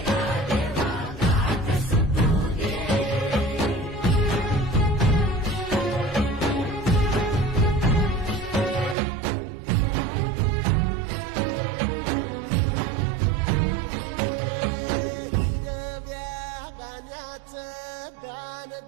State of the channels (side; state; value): left; drops out; at 9.0 s